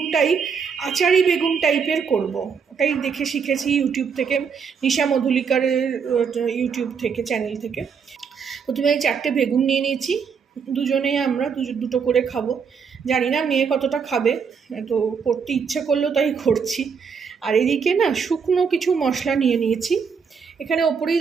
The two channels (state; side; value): quieter; left; 6.2 dB